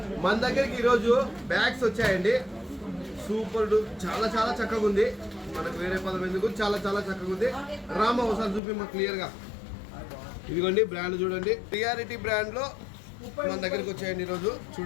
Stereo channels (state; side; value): drops out; right; at 8.6 s